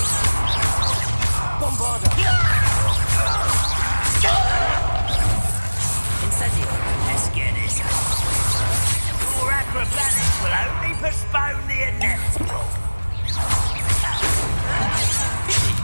Incendio. Let's get this. Your acrobatics will only postpone the inevitable.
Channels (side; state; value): both; inverted; correlation -1.00